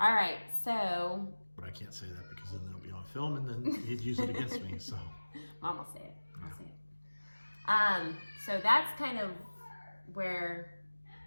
right, so... But I can't say that because then it'll be on film and then he'd use it against me, so... Mom will say it. I'll say it. So that's kind of where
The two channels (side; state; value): both; inverted; correlation -1.00